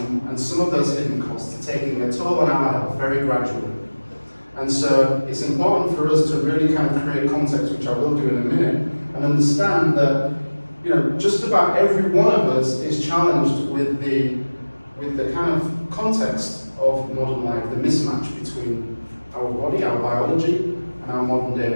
some of those hidden costs are taking their toll on our health very gradually. And so it's important for us to really kind of create context, which I will do in a minute, and understand that just about every one of us is challenged with the kind of context of modern life, the mismatch between our body, our biology, and our modern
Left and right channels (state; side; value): inverted; both; correlation -1.00